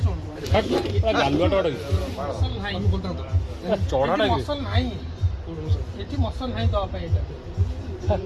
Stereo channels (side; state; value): both; identical; correlation 1.00